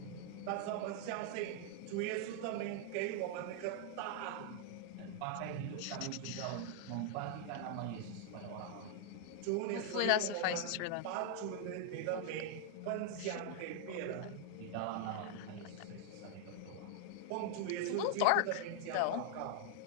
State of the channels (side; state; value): both; different; correlation 0.00